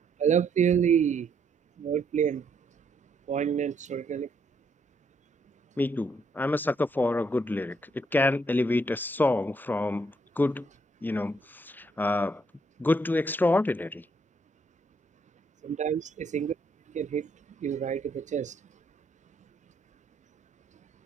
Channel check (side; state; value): both; normal; correlation 0.72